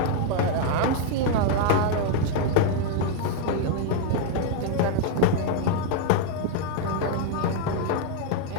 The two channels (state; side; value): different; both; correlation 0.00